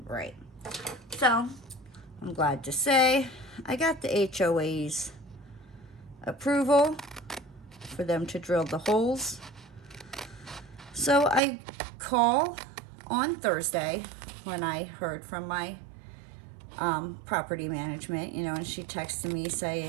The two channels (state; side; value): drops out; left; at 11.4 s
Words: So, I'm glad to say I got the HOA's approval for them to drill the holes. So, I call on Thursday when I heard from my property management, you know, and she texted me